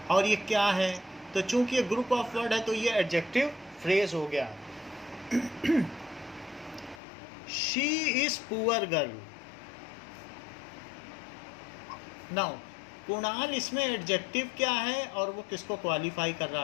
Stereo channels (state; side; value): drops out; right; at 7.0 s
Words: और ये क्या है, तो चूंकि ये ग्रुप ऑफ वर्ड है तो ये एडजेक्टिव फ्रेज हो गया। She is poor girl. Now Kunal, इसमें एडजेक्टिव क्या है और वो किसको क्वालिफाई कर